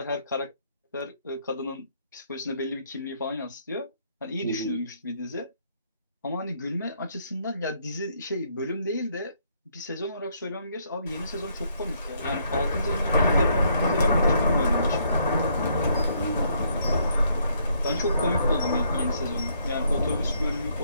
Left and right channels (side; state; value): both; inverted; correlation -0.70